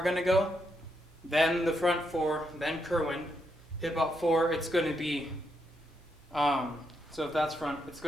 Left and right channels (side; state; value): both; normal; correlation 0.80